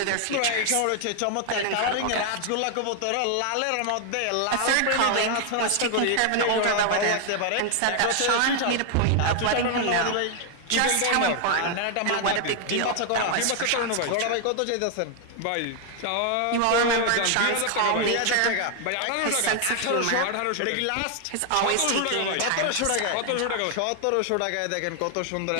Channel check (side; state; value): both; different; correlation 0.00